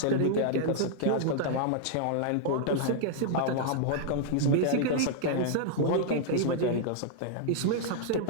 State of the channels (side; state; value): both; different; correlation 0.00